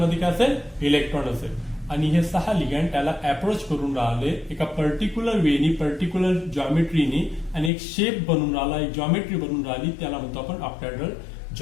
काय असेल, इलेक्ट्रॉन असेल. आणि हे 6 लिगँड त्याला अप्रोच करून राहिले एका पर्टिक्युलर वेनी, पर्टिक्युलर जॉमेट्रीनी, आणि एक शेप बनून राहिला, एक जॉमेट्री बनून राहिली, त्याला म्हणतो आपण ऑक्टॅहेड्रल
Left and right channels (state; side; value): drops out; right; at 7.7 s